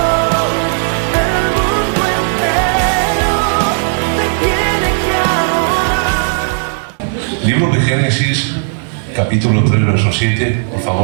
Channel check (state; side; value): silent; left; digital silence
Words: el mundo entero te tiene que adorar. Libro de Génesis, capítulo 3, verso 7, por